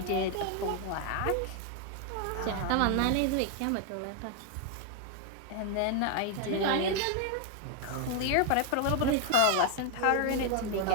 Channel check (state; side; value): different; both; correlation 0.01